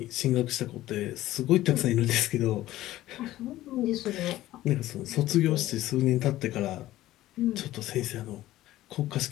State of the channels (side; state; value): right; quieter; 15.3 dB